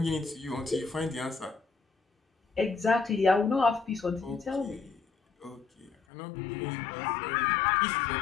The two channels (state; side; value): drops out; right; at 6.0 s